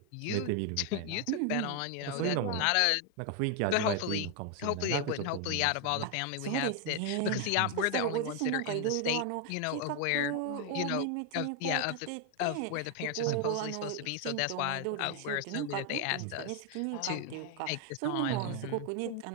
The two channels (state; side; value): different; both; correlation 0.01